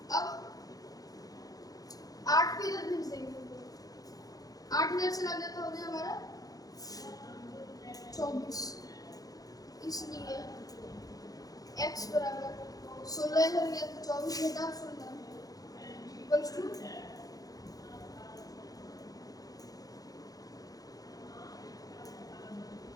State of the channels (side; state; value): right; late; 0.18 ms